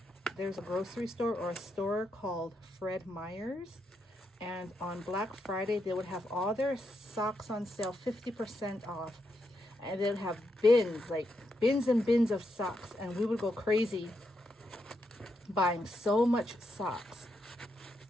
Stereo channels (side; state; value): both; normal; correlation 0.82